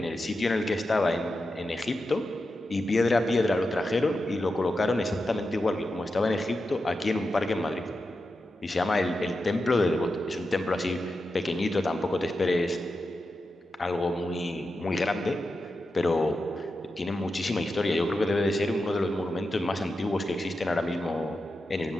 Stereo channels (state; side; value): normal; both; correlation 0.89